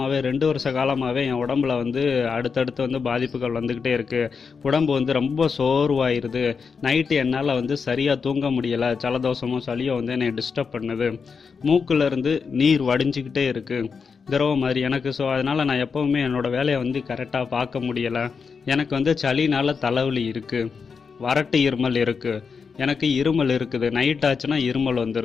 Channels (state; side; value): quieter; right; 5.6 dB